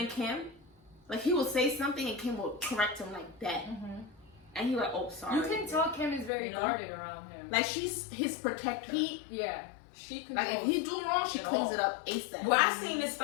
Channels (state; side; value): drops out; right; at 6.3 s